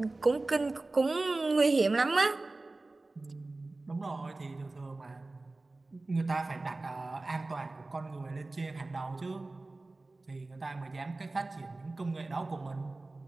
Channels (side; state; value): left; quieter; 3.2 dB